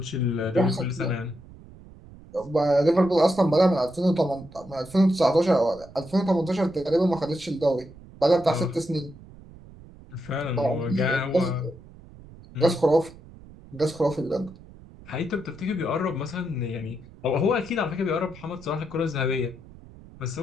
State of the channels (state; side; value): noise; right; rumble, 20 dB below the sound